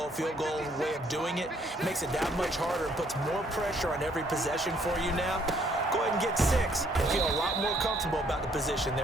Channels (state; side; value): normal; both; correlation 0.66